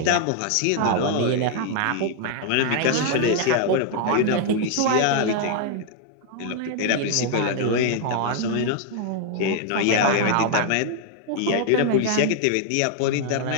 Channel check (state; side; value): different; both; correlation 0.00